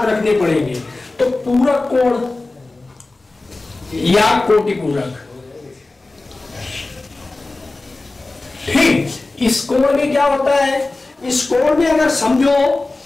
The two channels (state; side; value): quieter; right; 3.2 dB